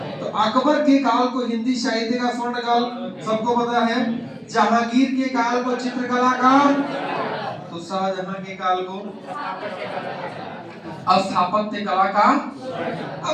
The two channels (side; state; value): both; identical; correlation 1.00